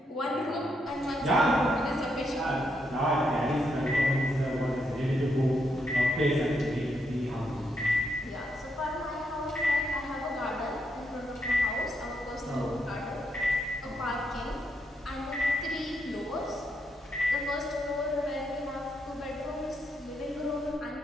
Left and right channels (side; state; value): both; normal; correlation 0.79